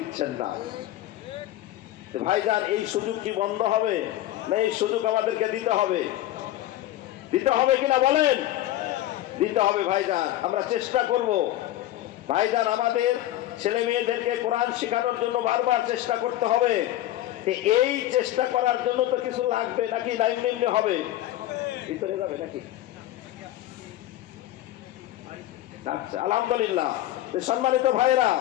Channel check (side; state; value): right; quieter; 14.3 dB